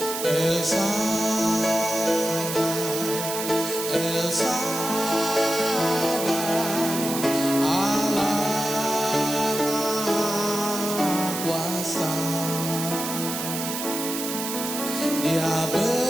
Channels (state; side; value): noise; right; hiss, 5 dB below the sound